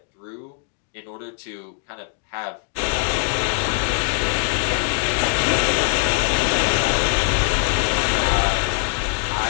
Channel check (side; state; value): right; silent; 58 dB below the other